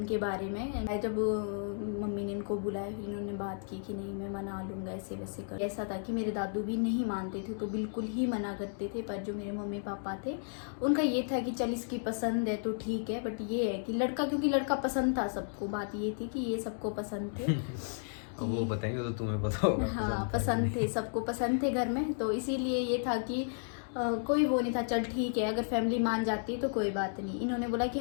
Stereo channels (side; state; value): right; silent; digital silence